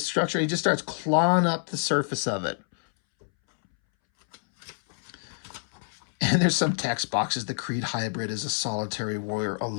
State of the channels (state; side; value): silent; right; 60 dB below the other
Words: structure. He just starts clawing up the surface of it. And there's some text boxes. The Creed hybrid is a solitary warrior, a